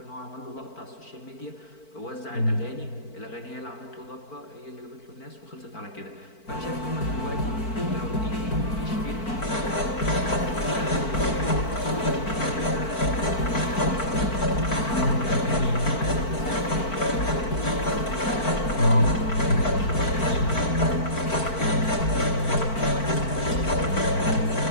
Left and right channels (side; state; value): right; late; 4.5 ms